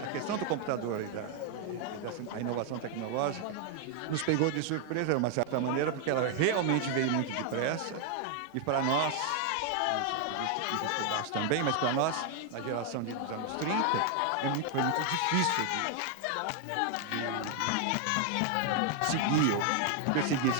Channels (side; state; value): both; different; correlation 0.00